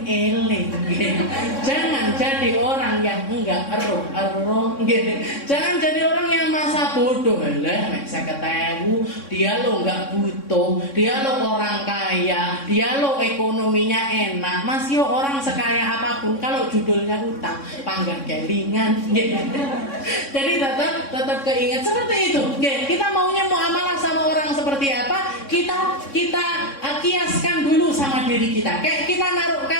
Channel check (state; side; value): late; right; 3.6 ms